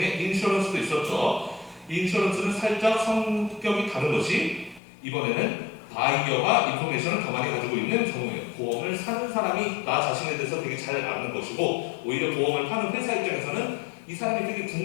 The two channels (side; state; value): right; drops out; at 4.8 s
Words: 인슈런스도 있었죠. 인슈런스는 살짝 성격이 다른 것이 이번에는 바이어가 인포메이션을 더 많이 가지고 있는 경우예요. 보험을 사는 사람이 나 자신에 대해서 되게 잘 아는 것이고 오히려 보험을 파는 회사 입장에서는 이 사람이 되게